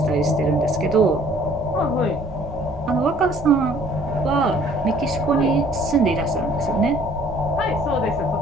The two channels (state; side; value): normal; both; correlation 0.57